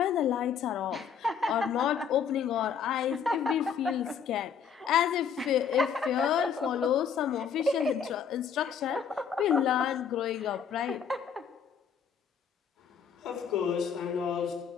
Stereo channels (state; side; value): quieter; right; 7.1 dB